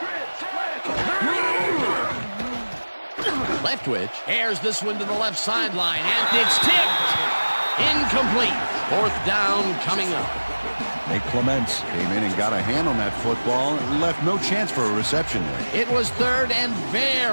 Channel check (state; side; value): inverted; both; correlation -1.00